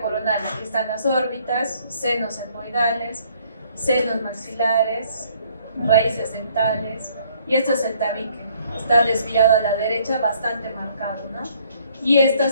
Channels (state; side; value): inverted; both; correlation -0.63